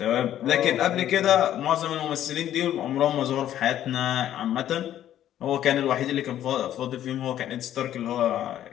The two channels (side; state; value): right; quieter; 11.6 dB